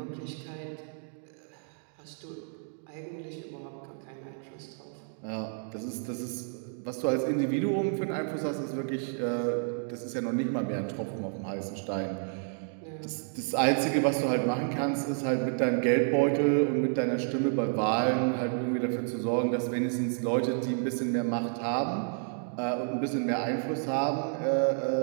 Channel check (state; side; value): silent; left; 57 dB below the other